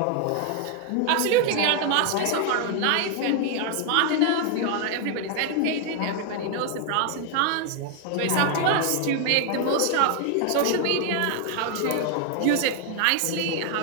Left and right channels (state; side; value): different; both; correlation 0.00